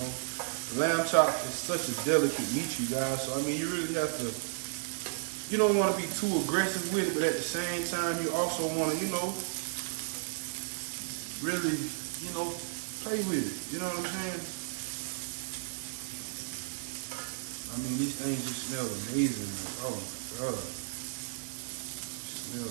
Lamb chop is such a delicate meat, you guys. So I mean, you really have to. You don't want to be too aggressive with it, but at the same time, you also want to, you know, really, you know, play with it. You know what I'm saying? I mean, these things just smell amazing. Oh my God. Smell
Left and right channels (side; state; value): left; silent; digital silence